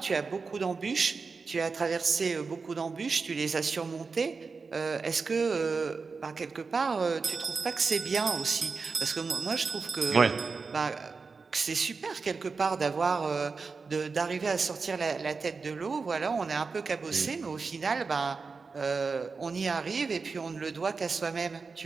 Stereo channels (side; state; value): left; quieter; 4.6 dB